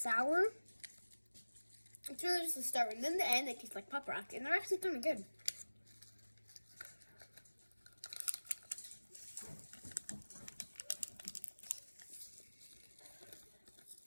It's really just the start, and then the end they taste like pop rock, and they're actually kind of good.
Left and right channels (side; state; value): both; inverted; correlation -1.00